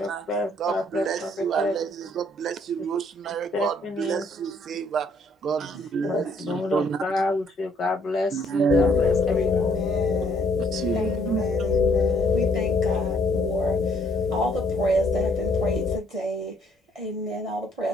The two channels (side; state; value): both; normal; correlation 0.66